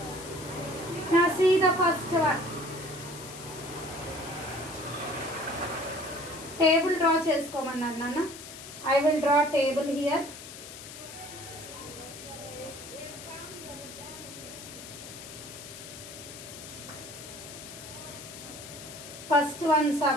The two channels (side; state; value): left; noise; hiss, 13 dB below the sound